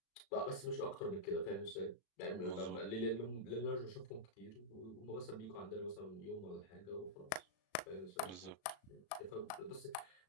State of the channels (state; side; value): late; right; 36 ms